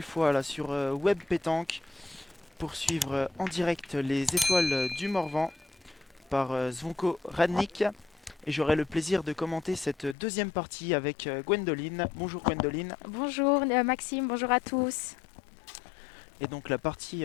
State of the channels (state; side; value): drops out; right; at 10.2 s